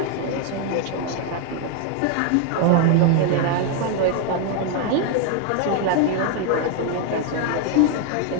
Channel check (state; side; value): different; both; correlation 0.01